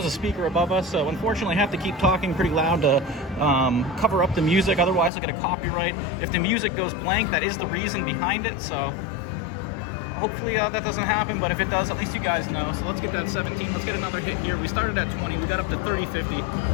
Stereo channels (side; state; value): right; drops out; at 5.1 s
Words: a speaker above us, so unfortunately I have to keep talking pretty loud to cover up the music, otherwise I'll get a copyright. If the music goes blank, that is the reason behind it, so hopefully that doesn't happen, but if it does, at least you guys know. So let's get that 17. Let's get another hit here. We started at 20. We got up to